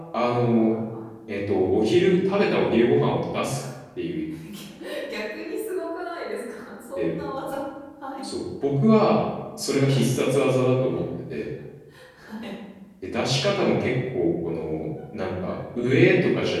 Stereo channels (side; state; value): both; identical; correlation 1.00